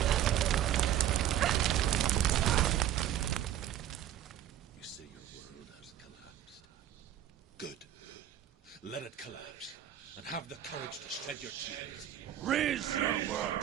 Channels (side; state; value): left; quieter; 11.3 dB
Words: You say your world has collapsed. Good. Let it collapse, and have the courage to shed your tears. Raise your world